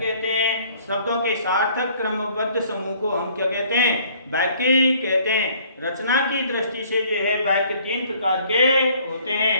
हैं। शब्दों के सार्थक क्रमबद्ध समूह को हम क्या कहते हैं? वाक्य कहते हैं। रचना की दृष्टि से जो है वाक्य तीन प्रकार के होते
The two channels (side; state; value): both; inverted; correlation -0.58